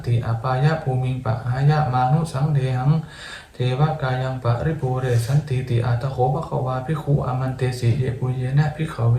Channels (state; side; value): identical; both; correlation 1.00